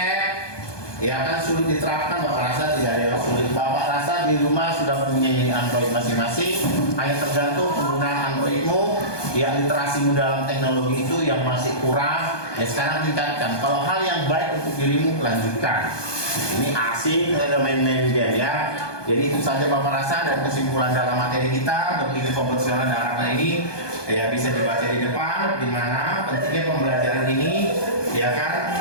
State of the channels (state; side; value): late; right; 1.2 ms